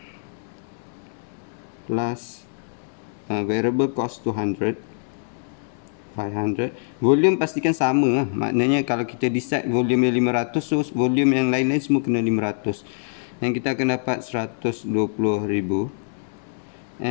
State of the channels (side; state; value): right; silent; digital silence